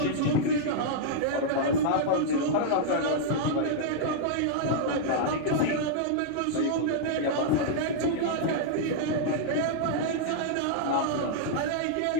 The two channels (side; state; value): both; different; correlation -0.01